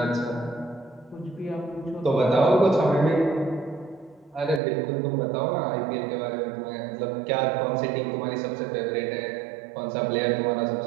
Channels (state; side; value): drops out; left; at 4.6 s